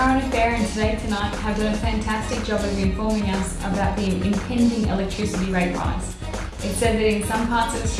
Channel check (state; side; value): identical; both; correlation 1.00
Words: affair and Today Tonight have done a fantastic job of informing us about the impending electricity rate rise. It said that in some parts of